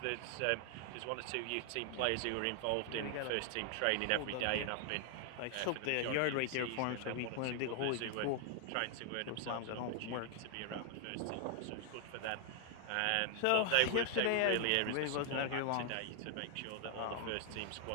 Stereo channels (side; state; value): both; different; correlation 0.00